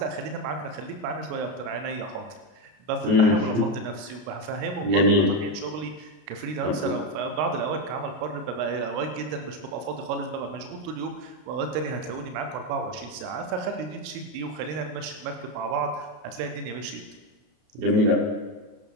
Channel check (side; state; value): left; late; 33 ms